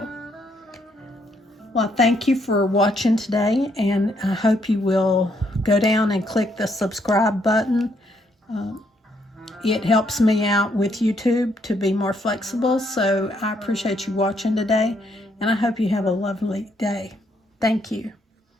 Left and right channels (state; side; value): normal; both; correlation 0.73